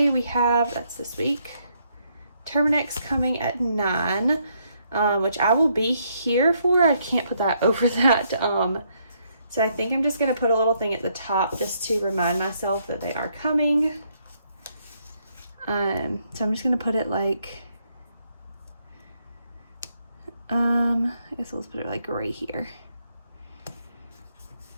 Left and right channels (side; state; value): both; inverted; correlation -0.74